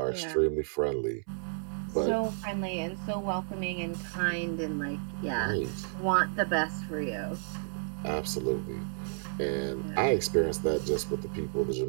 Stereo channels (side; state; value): left; silent; 57 dB below the other